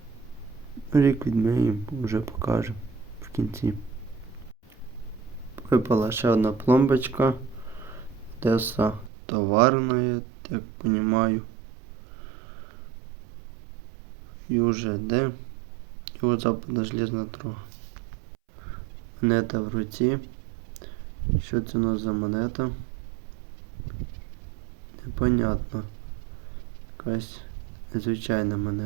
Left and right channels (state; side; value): drops out; left; at 9.1 s